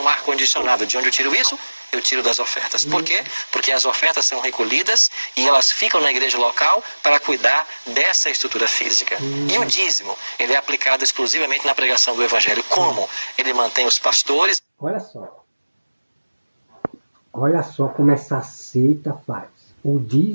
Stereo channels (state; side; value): inverted; both; correlation -1.00